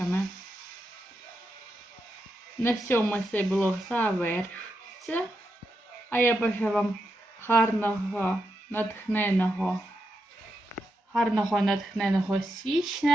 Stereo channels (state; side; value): normal; both; correlation 0.85